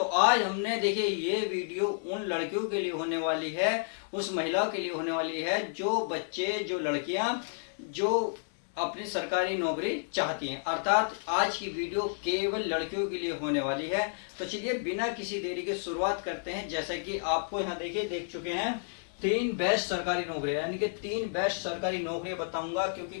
आज हमने देखिए ये वीडियो उन लड़कियों के लिए होने वाली है, उस महिलाओं के लिए होने वाली है जो बच्चे जो लड़कियां जो अपनी सरकारी नौकरी चाहती हैं। अर्थात आज की वीडियो केवल लड़कियों के लिए होने वाली है। तो चलिए बिना किसी देरी के शुरुआत करते हैं। जैसा कि आपको यहाँ देखिए देख चुके हैं 3 बेस्ट सरकारी नौकरियां, यानी कि 3 बेस्ट सरकारी नौकरियां बताऊंगा।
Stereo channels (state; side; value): silent; right; digital silence